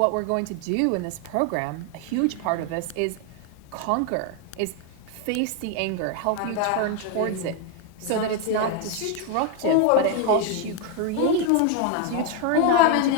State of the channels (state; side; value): different; both; correlation 0.01